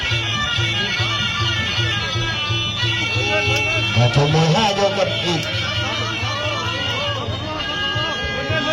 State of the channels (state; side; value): identical; both; correlation 1.00